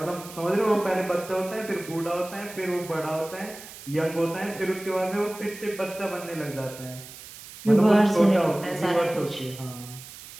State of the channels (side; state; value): right; noise; hiss, 16 dB below the sound